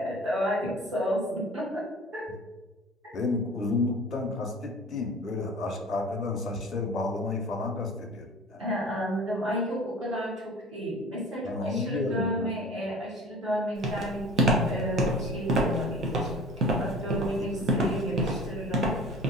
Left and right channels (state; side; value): normal; both; correlation 0.41